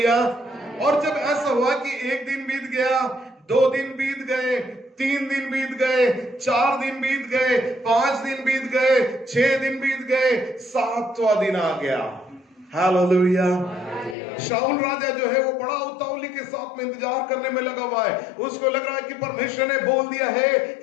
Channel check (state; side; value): drops out; right; at 14.2 s